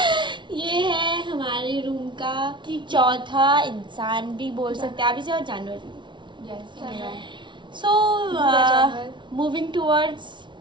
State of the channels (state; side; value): late; left; 0.23 ms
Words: ये है हमारे रूम का चौथा इंसान भी बोल सकते हैं आप इसे, और जानवर भी। यस, सो जानवर। Moving towards